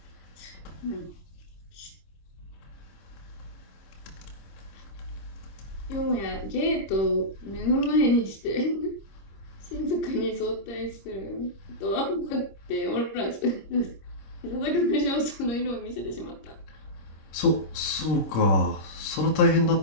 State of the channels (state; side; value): late; right; 26 ms